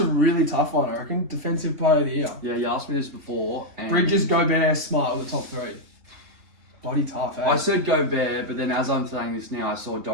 really tough one, I reckon. Defensive Player of the Year. Yeah, you asked me this before. And Bridges, Gobert, Smart were the top 3. Bloody tough, eh? I said Gobert, but then as I'm saying this now, I saw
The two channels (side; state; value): left; late; 3.5 ms